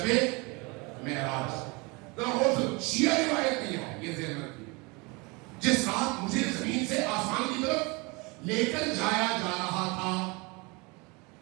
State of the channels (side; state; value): left; quieter; 27.5 dB